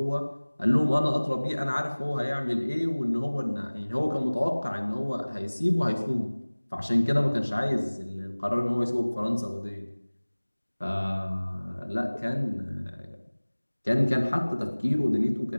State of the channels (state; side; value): inverted; both; correlation -1.00